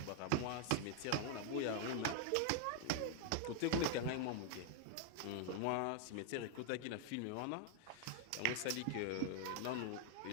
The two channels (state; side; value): different; both; correlation 0.00